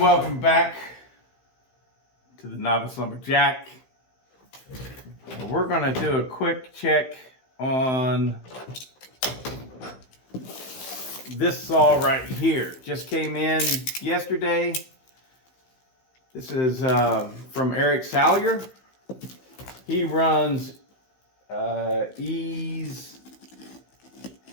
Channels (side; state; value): right; late; 16 ms